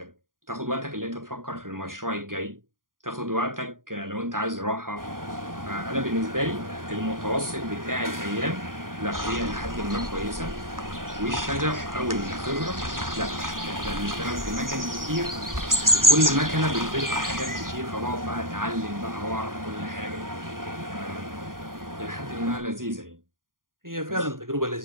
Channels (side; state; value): left; late; 0.90 ms